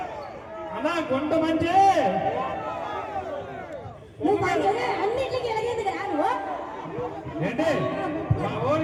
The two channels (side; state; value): both; identical; correlation 1.00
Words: అన్నా, గుంట మంచి నువ్వు అన్నింటికి ఎలాగేది కదా నువ్వు ఏంటి?